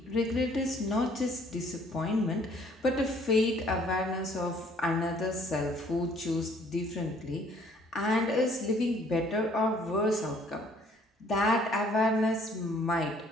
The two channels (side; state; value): both; normal; correlation 0.60